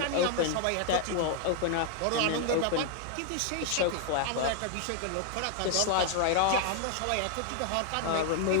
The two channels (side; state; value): both; different; correlation 0.00